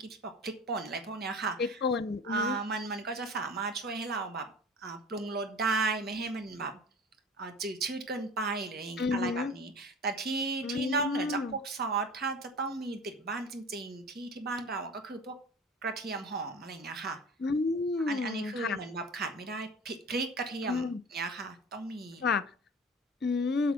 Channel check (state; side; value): normal; both; correlation 0.38